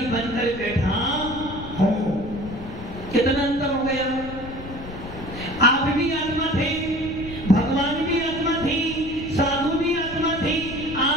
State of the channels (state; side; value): noise; left; rumble, 13 dB below the sound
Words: बनकर बैठा हूं। कितना अंतर हो गया। आप भी आत्मा थे भगवान भी आत्मा थी साधु भी आत्मा थी